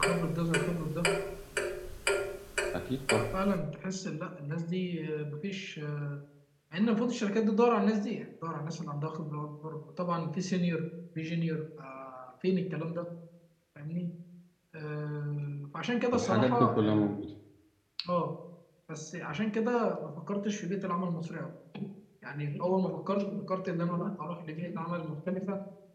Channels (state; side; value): identical; both; correlation 1.00